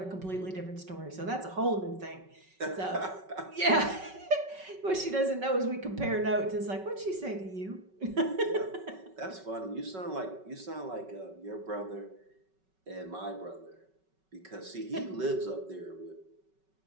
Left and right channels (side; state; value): left; late; 5.3 ms